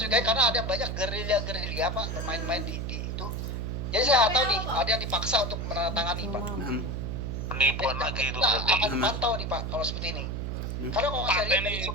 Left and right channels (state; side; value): noise; right; hum, 3 dB below the sound